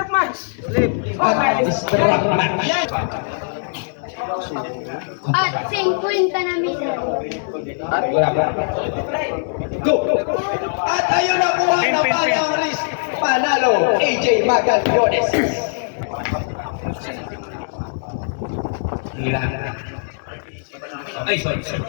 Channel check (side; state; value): right; silent; digital silence